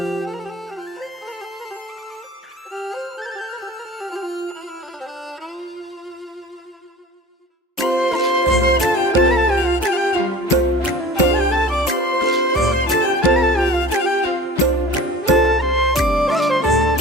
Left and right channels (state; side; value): normal; both; correlation 0.42